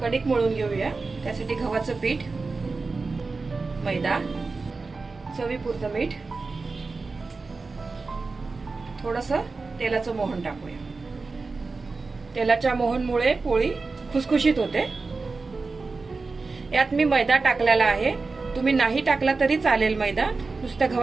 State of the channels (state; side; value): quieter; left; 4.0 dB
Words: मळून घेऊया। त्यासाठी गव्हाचं पीठ, मैदा, चवीपुरतं मीठ, थोडंसं तेलाचं मोहन टाकूया। तेलाच्या मोहनमुळे पोळी खुसखुशीत होते। यात मी मैदा टाकलेला आहे। तुम्ही नाही टाकला तरी चालेल, मैदा नुसत्या